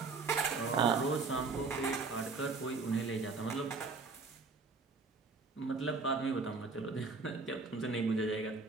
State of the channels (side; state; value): left; quieter; 4.2 dB